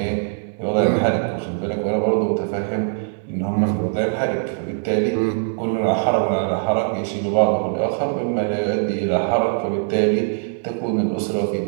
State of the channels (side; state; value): left; silent; digital silence